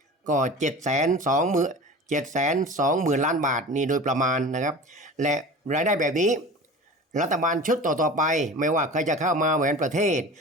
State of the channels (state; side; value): normal; both; correlation 0.36